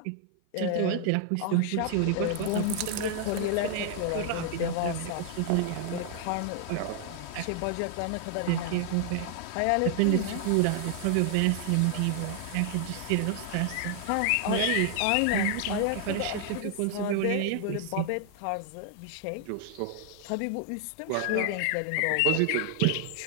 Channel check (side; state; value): both; different; correlation 0.00